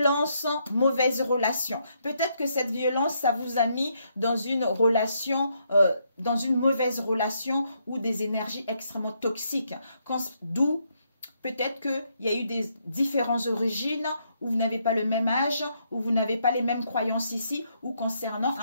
mauvaise relation. Peut-être que cette violence, ça vous a mis dans une relation, dans une mauvaise relation ou des énergies extrêmement toxiques. D'où peut-être qu'il y a eu des différentes origines, ou vous n'avez pas le même âge, ou vous n'avez pas les mêmes croyances ici, ou concernant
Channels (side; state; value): both; inverted; correlation -0.75